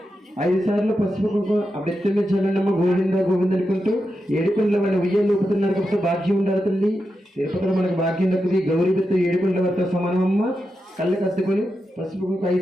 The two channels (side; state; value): both; normal; correlation 0.88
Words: ఐదు సార్లు పసుపు కుంకుమ అభ్యర్థులు చల్లనమ్మ గోవింద గోవింద అనుకుంటూ ఏడుకొండల వాళ్ళ ఉయ్యాలు ఊపుతున్నారు కాబట్టి భాగ్యం ఉండాలి తల్లి. తిరుపతిలో మనకు భాగ్యం దక్కుది. గౌరీ బిత్తు ఏడుకొండల వద్ద సమానమమ్మ. కళ్ళు కత్తుకొని పసుపు కుంకుమ